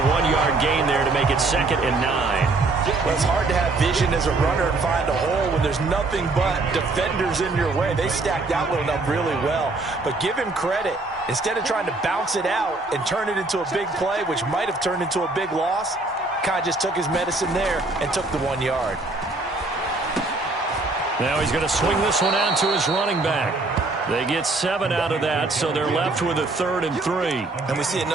1-yard gain there to make it 2nd and 9. Well, it's hard to have vision as a runner and find a hole when there's nothing but defenders in your way. They stacked that one up really well. But give him credit. Instead of trying to bounce it out and turn it into a big play, which might have turned into a big loss, kind of just took his medicine there and took the 1 yard. Now he's going to swing this one out to his running back. They get 7 out of that, so they're left with a 3rd and 3. And we see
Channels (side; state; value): left; quieter; 3.3 dB